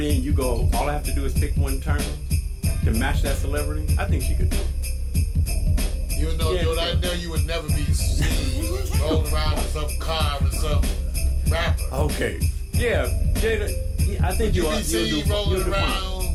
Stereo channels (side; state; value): both; identical; correlation 1.00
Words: and you go, all I have to do is pick one term to match that celebrity, I think she could do it. Even though, dude, I know you would never be seen rolling around in some car with some rapper. Okay. Yeah, Jada, I think you'll be seen rolling around